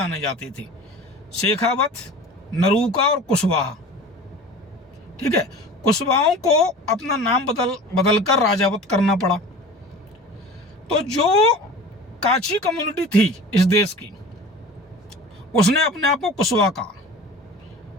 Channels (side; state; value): both; normal; correlation 0.38